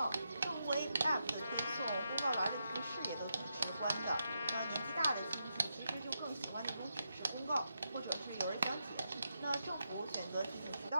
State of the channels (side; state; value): both; inverted; correlation -0.84